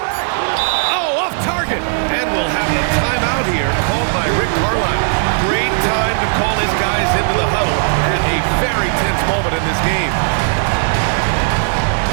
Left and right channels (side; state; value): left; silent; digital silence